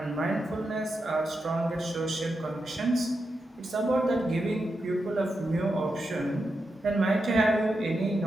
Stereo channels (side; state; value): both; normal; correlation 0.87